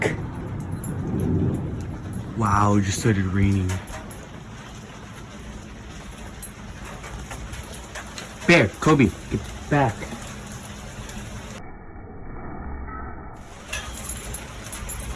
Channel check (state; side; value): identical; both; correlation 1.00